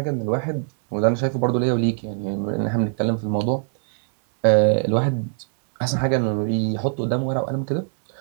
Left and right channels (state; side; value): silent; left; digital silence